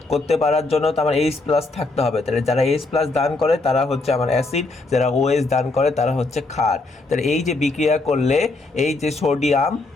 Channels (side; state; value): right; quieter; 3.3 dB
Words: করতে পারার জন্য তো আমার H+ থাকতে হবে। তাহলে যারা H+ দান করে তারা হচ্ছে আমার অ্যাসিড, যারা OH দান করে তারা হচ্ছে ক্ষার। তাহলে এই যে বিক্রিয়া করলে এই যে সোডিয়াম